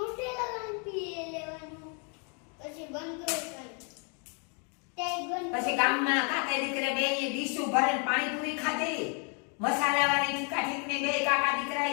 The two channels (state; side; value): quieter; right; 37.4 dB